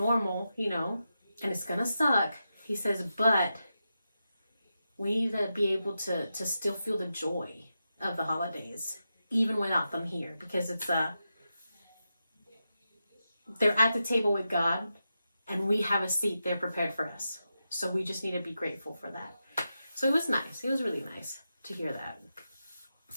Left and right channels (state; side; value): inverted; both; correlation -0.89